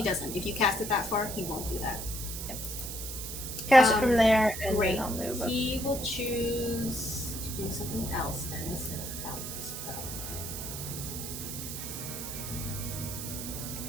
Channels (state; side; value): noise; right; hiss, 7 dB below the sound